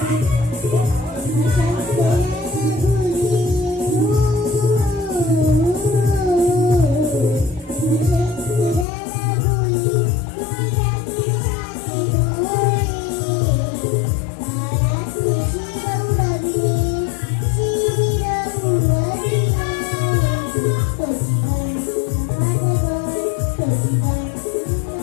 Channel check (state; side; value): drops out; right; at 8.8 s